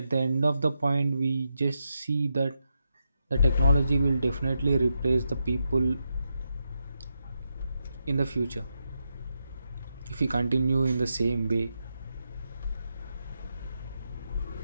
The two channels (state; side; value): inverted; both; correlation -0.84